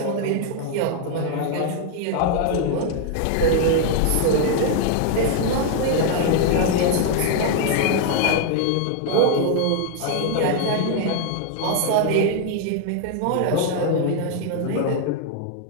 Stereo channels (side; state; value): both; different; correlation 0.00